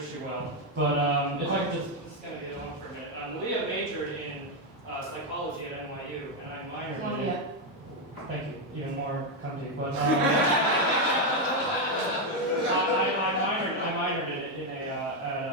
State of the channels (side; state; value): both; normal; correlation 0.04